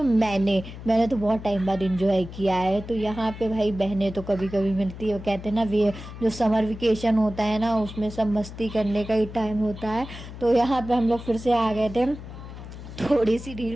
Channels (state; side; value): noise; left; hum, 12 dB below the sound